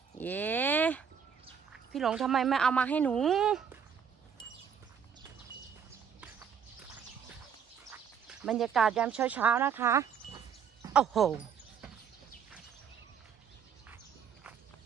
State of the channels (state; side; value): quieter; left; 7.4 dB